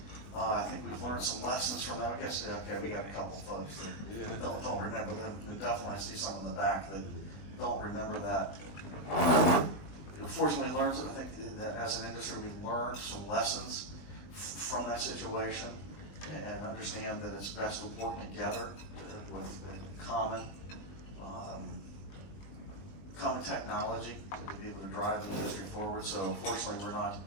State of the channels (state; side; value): late; right; 20 ms